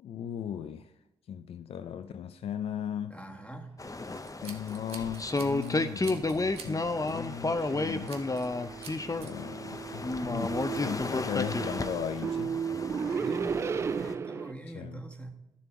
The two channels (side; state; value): both; normal; correlation 0.68